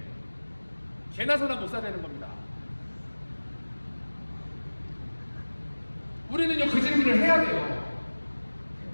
개나 소나 못 사는 겁니다. 우리는요, 그 질문을 해야 돼요.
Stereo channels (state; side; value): inverted; both; correlation -1.00